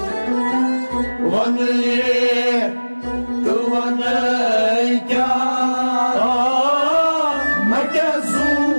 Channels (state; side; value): inverted; both; correlation -1.00